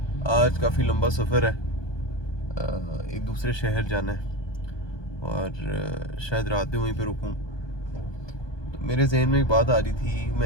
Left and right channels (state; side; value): late; right; 1.2 ms